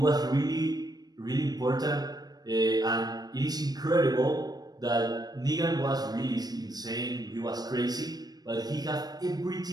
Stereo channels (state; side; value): late; left; 0.19 ms